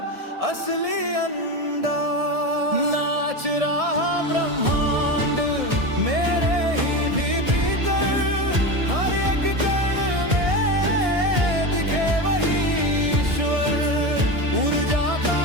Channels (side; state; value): left; late; 1.7 ms